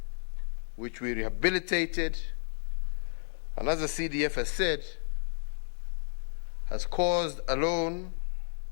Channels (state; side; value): silent; right; 56 dB below the other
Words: which we rehabilitated, and as the CDF has said, has caused alone